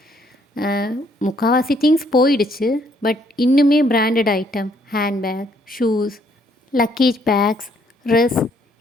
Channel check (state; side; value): normal; both; correlation 0.67